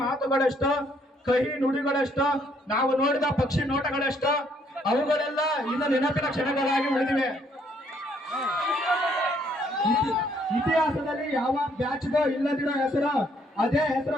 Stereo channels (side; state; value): both; normal; correlation 0.68